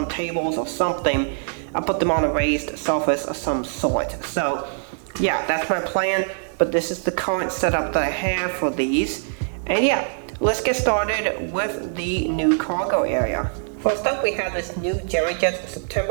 tables or something. I'll put them on a raised surface of some sort. So yeah, that's my plan, but this is the current setup that I have for these. And yeah, let's get started with the new cargo area. First up, we have this new GeoJets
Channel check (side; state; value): left; silent; digital silence